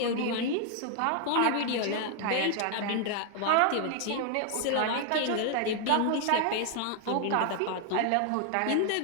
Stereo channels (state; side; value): different; both; correlation 0.00